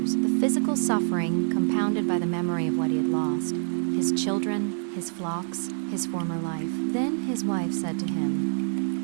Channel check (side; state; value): left; silent; digital silence